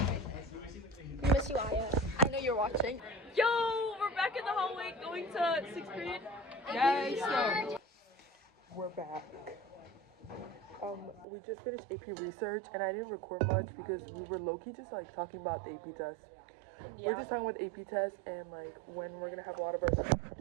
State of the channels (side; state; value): left; drops out; at 11.2 s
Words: We miss you, Aya. I know you're watching. Yo, we're back in the hallway going to 6th period. Yes, we're back. We just finished AP research, and I didn't record much because we were low-key just like talking about the AP test. We're just talking about the AP test and like when we're gonna have a lot of our stuff